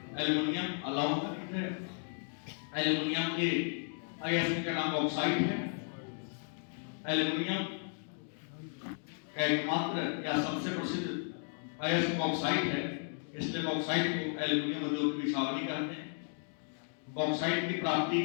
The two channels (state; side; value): silent; right; 55 dB below the other